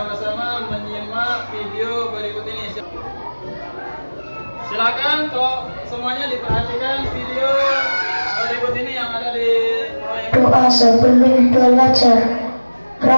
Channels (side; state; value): both; inverted; correlation -1.00